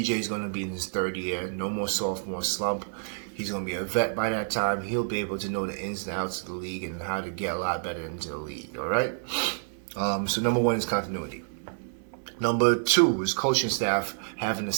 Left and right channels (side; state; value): left; silent; 59 dB below the other